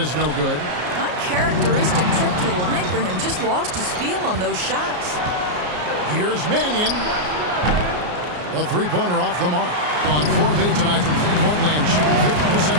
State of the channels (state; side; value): late; left; 33 ms